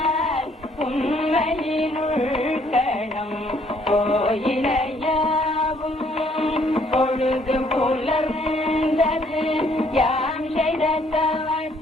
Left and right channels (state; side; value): normal; both; correlation 0.65